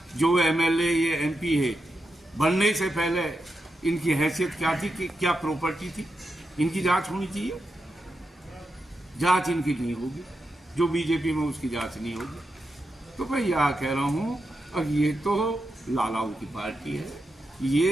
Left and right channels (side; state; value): both; normal; correlation 0.87